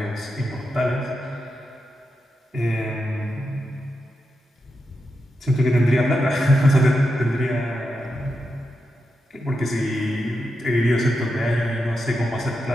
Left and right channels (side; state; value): both; normal; correlation 0.87